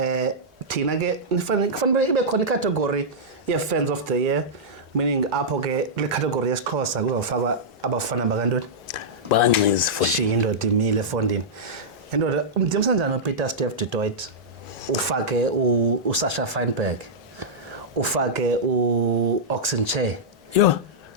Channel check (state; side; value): normal; both; correlation -0.10